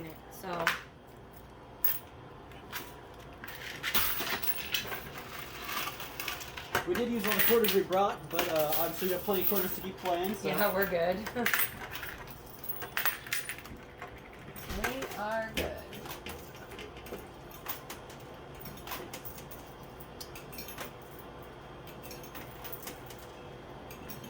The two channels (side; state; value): both; identical; correlation 1.00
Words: it, so. We did use all the quarters we brought, but obviously we have plenty of quarters to keep playing. So. Yeah, we're good. We are good.